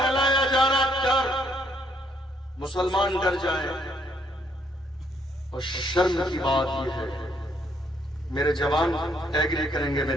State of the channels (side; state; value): both; normal; correlation 0.70